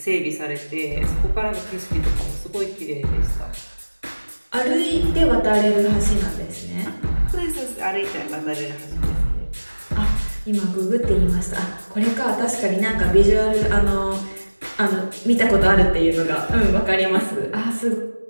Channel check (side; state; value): both; inverted; correlation -1.00